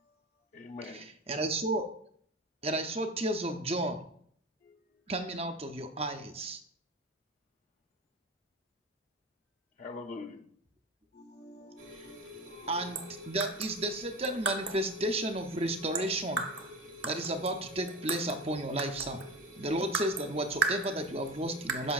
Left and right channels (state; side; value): normal; both; correlation 0.29